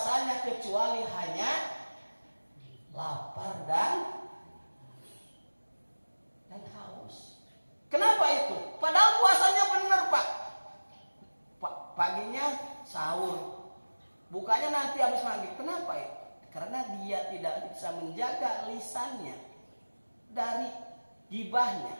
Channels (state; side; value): inverted; both; correlation -1.00